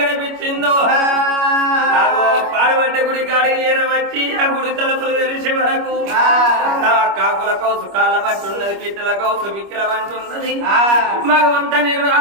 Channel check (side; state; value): left; late; 25 ms